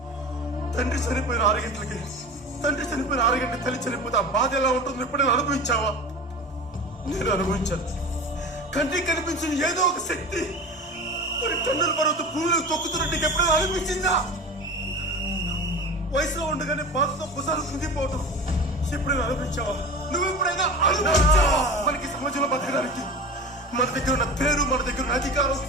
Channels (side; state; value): both; normal; correlation 0.33